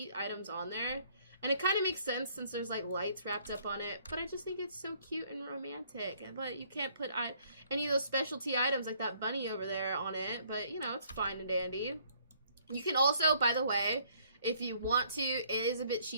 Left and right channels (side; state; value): both; inverted; correlation -0.63